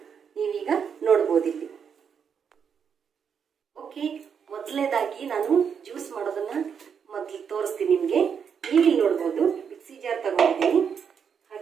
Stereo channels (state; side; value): quieter; left; 7.1 dB